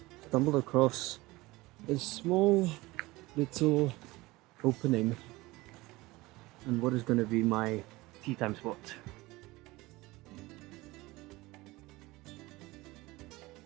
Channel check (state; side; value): quieter; left; 20.7 dB